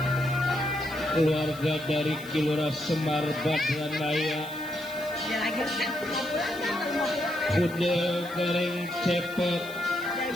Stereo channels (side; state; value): left; noise; hiss, 19 dB below the sound